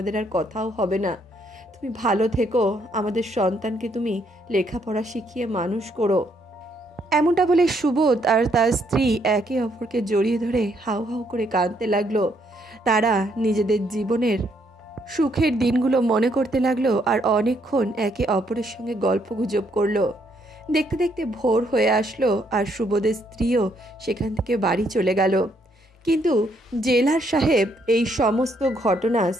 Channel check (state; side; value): normal; both; correlation 0.72